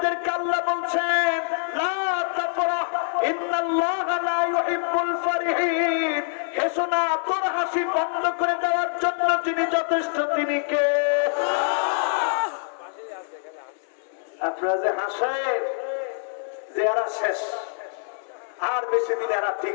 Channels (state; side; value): silent; right; digital silence